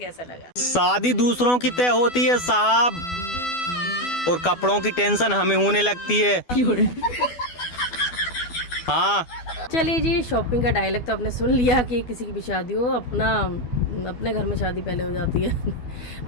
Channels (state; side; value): late; right; 12 ms